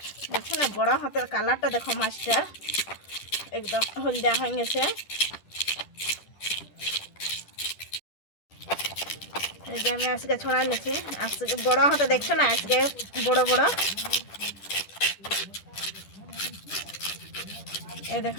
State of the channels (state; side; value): late; right; 10 ms